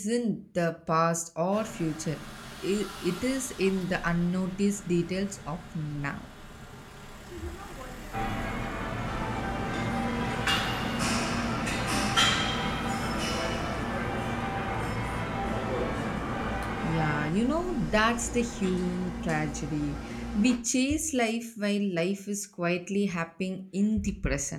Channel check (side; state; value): both; identical; correlation 1.00